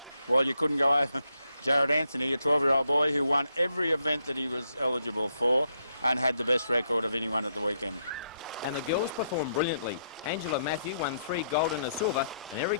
Well, you couldn't go over Jared Anthony, a 12-year-old boy who won every event that he was eligible for and had the best record of anyone at the weekend. And the girls performed brilliantly. Angela Matthew won 3 gold and a silver, and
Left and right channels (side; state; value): both; inverted; correlation -0.77